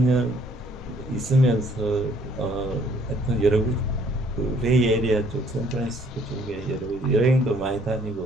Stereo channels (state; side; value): noise; left; rumble, 16 dB below the sound